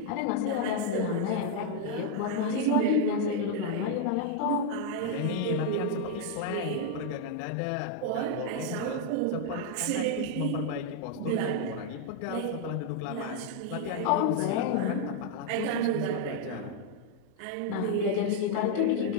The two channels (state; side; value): different; both; correlation 0.00